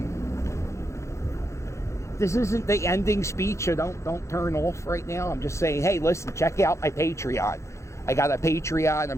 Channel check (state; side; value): late; right; 0.14 ms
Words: This isn't the ending speech, so don't turn off right now. I'm just saying, hey, listen, check out my Patreon. I got a Patreon.